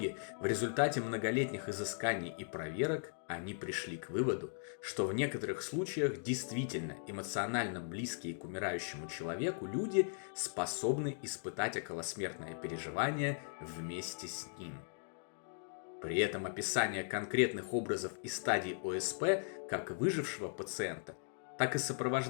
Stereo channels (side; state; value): right; silent; digital silence